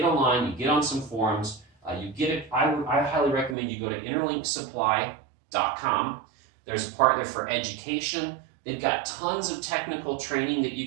online, you get on some forums, I highly recommend you go to interlinksupply.com. There's a part there for education. They've got tons of technical training that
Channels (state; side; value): drops out; left; at 3.6 s